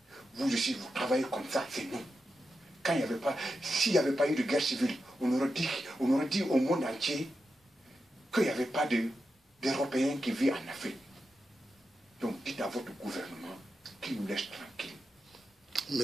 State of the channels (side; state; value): both; normal; correlation 0.89